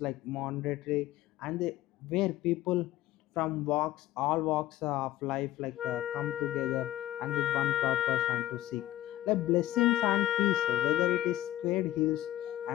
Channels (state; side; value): quieter; right; 14.3 dB